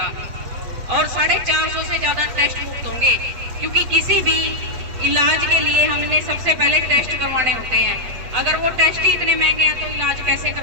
और 450 से ज्यादा टेस्ट मुफ्त होंगे, क्योंकि किसी भी इलाज के लिए हमने सबसे पहले टेस्ट करवाने होते हैं। अगर वो टेस्ट ही इतने महंगे हैं तो इलाज कैसे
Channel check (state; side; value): late; left; 8.3 ms